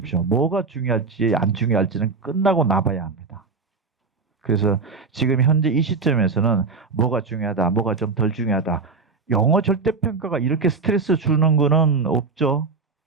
뭐가 중요할지 안 중요할지는 끝나고 나봐야 합니다. 그래서 지금 현재 이 시점에서는 뭐가 중요하다, 뭐가 좀 덜 중요하다. 영어 절대평가가 이렇게 스트레스 주는 거는 없죠.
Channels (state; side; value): quieter; left; 4.5 dB